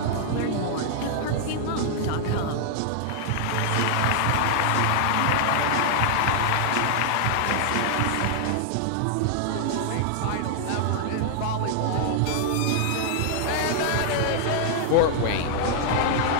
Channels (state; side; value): different; both; correlation 0.00